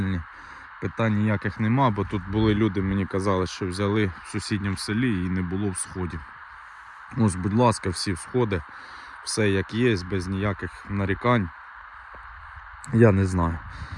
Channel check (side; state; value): both; identical; correlation 1.00